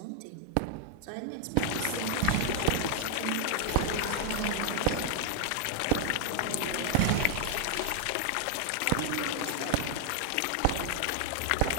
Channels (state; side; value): different; both; correlation 0.00